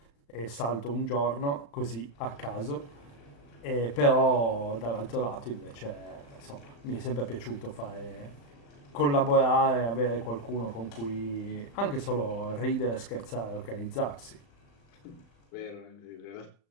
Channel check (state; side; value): late; right; 35 ms